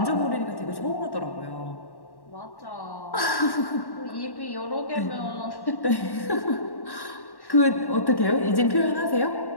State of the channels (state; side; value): late; right; 1.1 ms